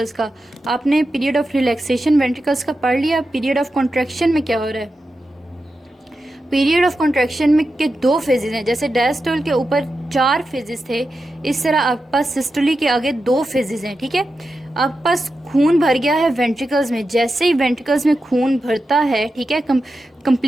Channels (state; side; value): normal; both; correlation 0.90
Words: का। आपने पीरियड ऑफ रिलैक्सेशन वेंट्रिकल्स का पढ़ लिया। पीरियड ऑफ कॉन्ट्रैक्शन में क्या हो रहा है? पीरियड ऑफ कॉन्ट्रैक्शन में के दो फेजेस हैं। जैसे डायस्टोल के ऊपर 4 फेजेस थे, इस तरह आपके पास सिस्टोली के आगे 2 फेजेस हैं। ठीक है, आपके पास खून भर गया है वेंट्रिकल्स में। जैसे ही वेंट्रिकल्स में खून भरता है, ठीक है,